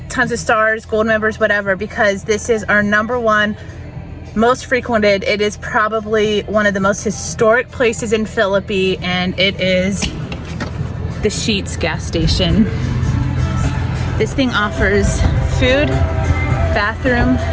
tons of stars, gold members, whatever, because this is our #1 most frequented. It is probably one of the most historic places in Philippi, and it is the Sheets gas station. This thing offers food, bathroom,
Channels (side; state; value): both; identical; correlation 1.00